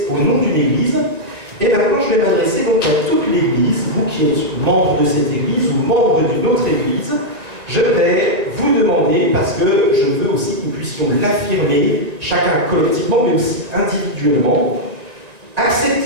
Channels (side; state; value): left; late; 1.9 ms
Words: au nom d'une Église. Et maintenant, je vais m'adresser donc à toute l'Église, vous qui êtes membre de cette Église ou membre d'une autre Église. Je vais vous demander, parce que je veux aussi que nous puissions l'affirmer, chacun collectivement, mais aussi individuellement,